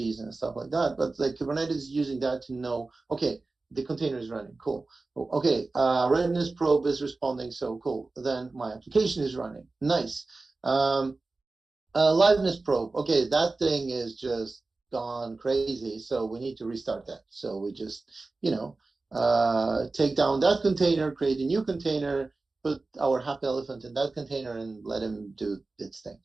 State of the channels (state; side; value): quieter; left; 3.5 dB